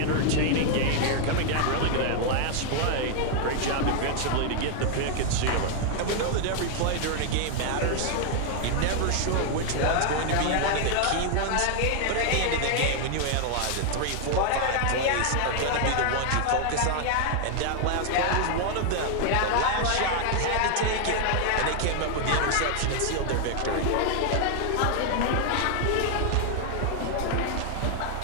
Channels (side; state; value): both; different; correlation 0.00